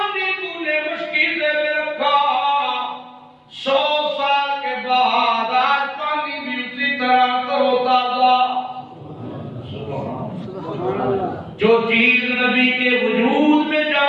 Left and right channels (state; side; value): identical; both; correlation 1.00